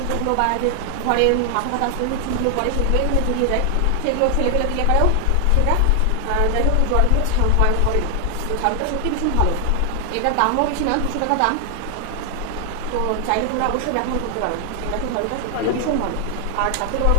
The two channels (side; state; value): both; different; correlation 0.00